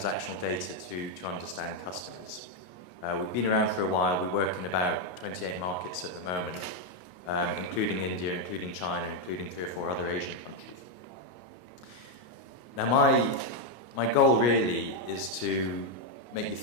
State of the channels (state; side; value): late; right; 33 ms